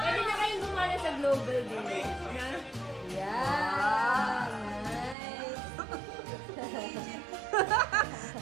na kayong gumana sa global din. Yeah. Nice.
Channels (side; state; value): left; drops out; at 5.2 s